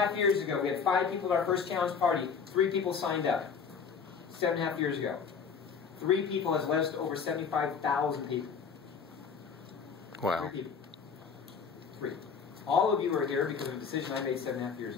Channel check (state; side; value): quieter; right; 6.1 dB